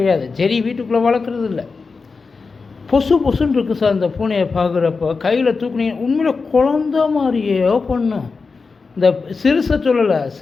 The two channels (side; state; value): right; quieter; 4.5 dB